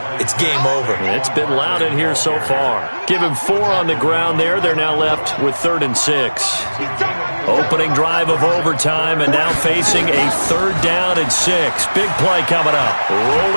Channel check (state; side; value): inverted; both; correlation -1.00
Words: it's game over. It's been loud in here so far. Give him 4 on the ground there. They're now left with 3rd and 6. Opening drive of overtime and now facing a 3rd down and 6. Big play coming up.